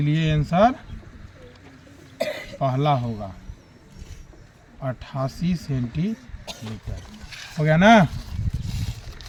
आंसर पहला होगा 88 सेंटीमीटर। हो गया ना?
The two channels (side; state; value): both; identical; correlation 1.00